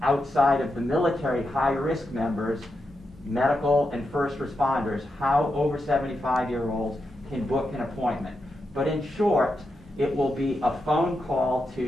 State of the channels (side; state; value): both; normal; correlation 0.86